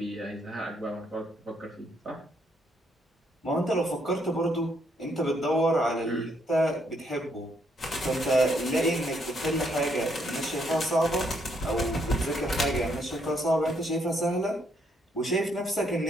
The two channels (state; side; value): normal; both; correlation 0.73